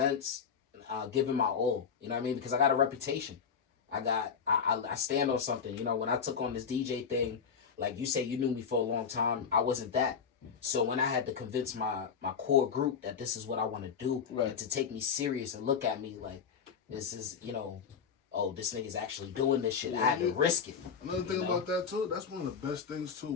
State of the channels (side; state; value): right; quieter; 6.5 dB